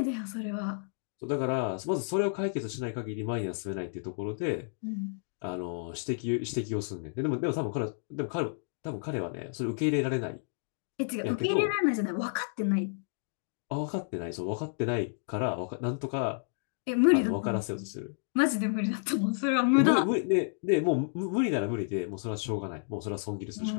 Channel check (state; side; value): silent; right; digital silence